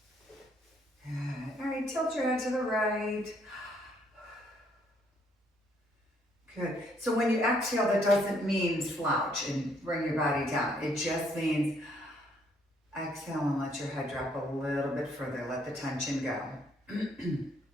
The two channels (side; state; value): both; normal; correlation 0.68